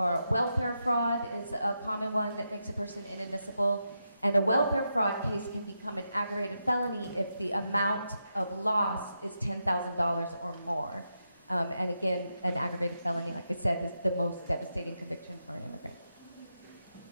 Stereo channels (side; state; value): both; inverted; correlation -0.85